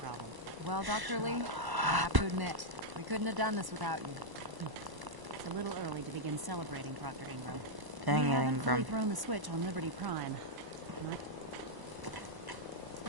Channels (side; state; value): left; late; 1.0 ms